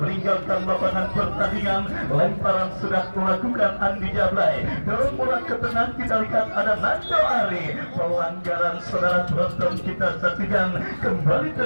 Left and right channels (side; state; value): both; inverted; correlation -1.00